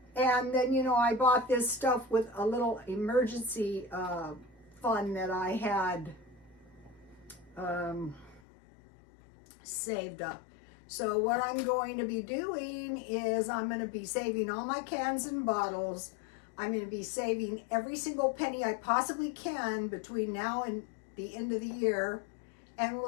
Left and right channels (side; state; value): right; drops out; at 8.4 s